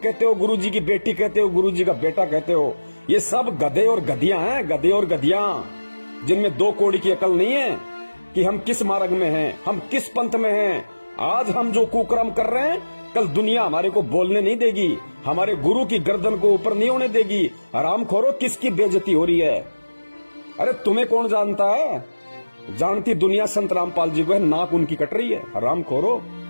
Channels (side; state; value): both; inverted; correlation -1.00